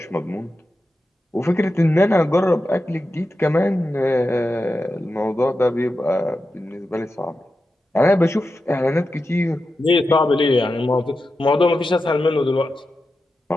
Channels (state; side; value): normal; both; correlation 0.91